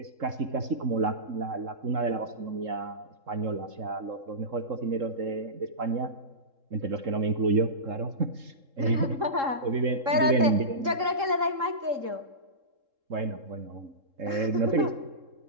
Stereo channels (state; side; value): late; left; 3.7 ms